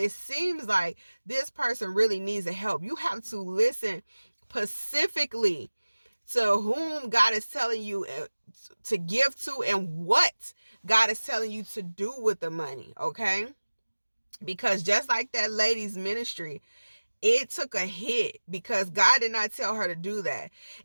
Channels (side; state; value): both; inverted; correlation -1.00